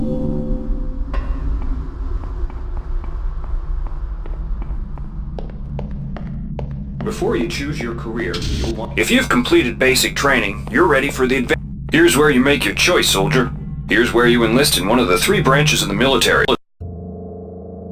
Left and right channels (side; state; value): both; identical; correlation 1.00